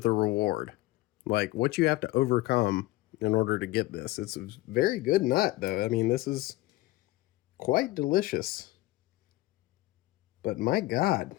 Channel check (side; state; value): right; quieter; 18.3 dB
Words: reward. Like, what you have to overcome in order to get this. It's a very good nut, though. I mean, this is quite delicious. But my God.